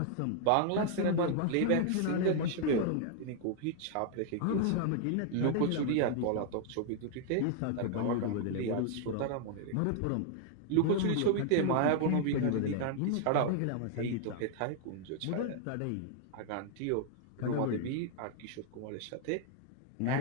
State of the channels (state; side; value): different; both; correlation 0.00